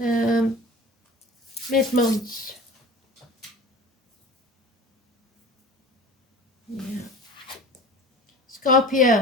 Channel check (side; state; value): both; normal; correlation 0.39